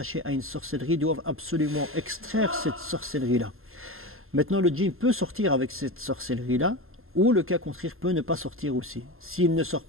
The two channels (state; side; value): late; left; 0.61 ms